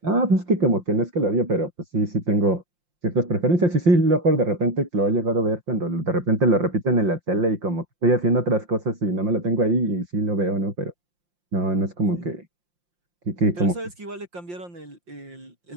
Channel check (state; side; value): late; left; 5.7 ms